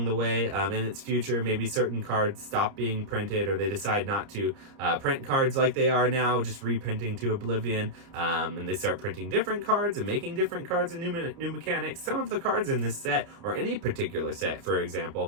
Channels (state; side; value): late; left; 30 ms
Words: way in its future, maybe certain cards stop being printed, or they decide not to print cards like they are now, just reprinting to oblivion, and they start printing different cards and making different cards and new mechanics. Some of the cards in this set, or any particular set, for